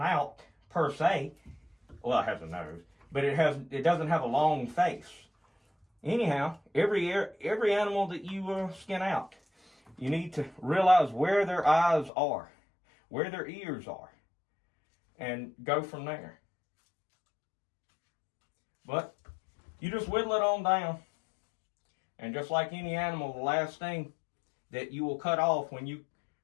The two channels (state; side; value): drops out; right; at 12.1 s